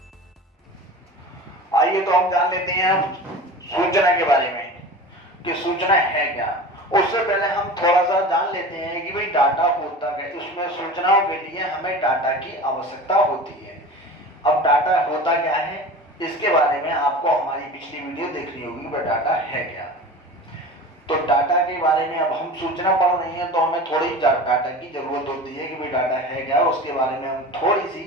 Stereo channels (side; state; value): both; normal; correlation 0.34